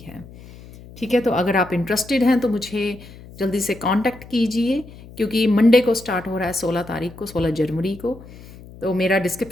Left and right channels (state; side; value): noise; left; hum, 18 dB below the sound